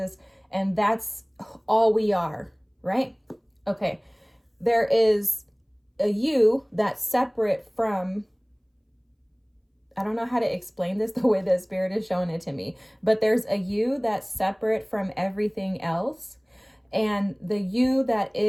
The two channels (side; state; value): both; identical; correlation 1.00